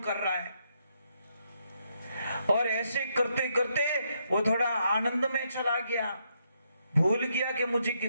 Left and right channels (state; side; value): inverted; both; correlation -0.77